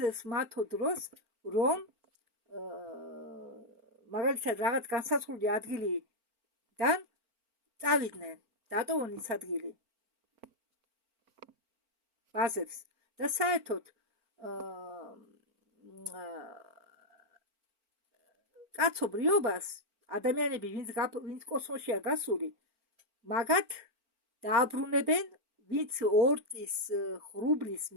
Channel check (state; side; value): late; left; 4.4 ms